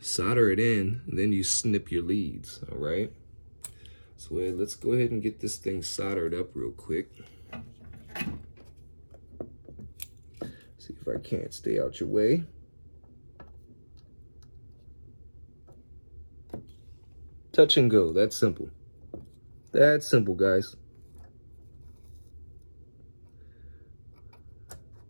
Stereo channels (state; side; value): inverted; both; correlation -1.00